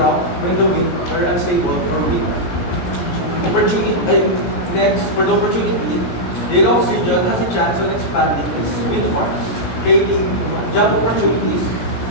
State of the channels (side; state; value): right; late; 17 ms